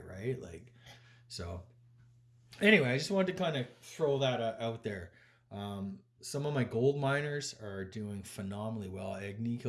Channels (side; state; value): both; identical; correlation 1.00